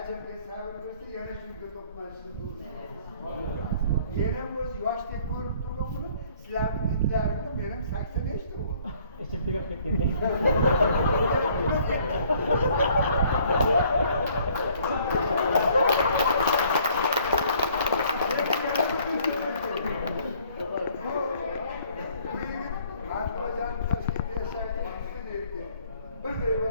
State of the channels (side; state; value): both; inverted; correlation -0.60